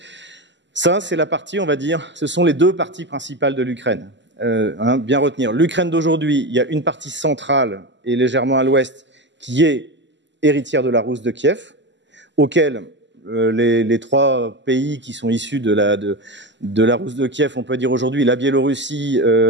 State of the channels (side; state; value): left; late; 0.53 ms